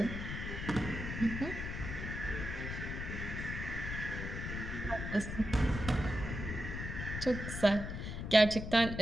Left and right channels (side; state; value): left; noise; rumble, 5 dB below the sound